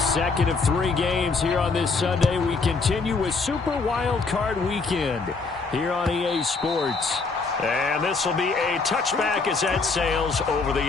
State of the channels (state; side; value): quieter; right; 4.3 dB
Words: second of 3 games here on this Sunday. We continue with Super Wild Card Weekend here on EA Sports. And this will be a touchback as that sails over the